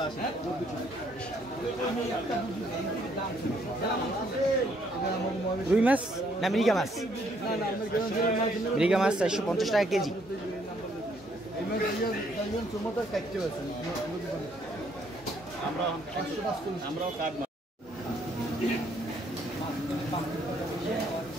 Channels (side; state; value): both; normal; correlation 0.68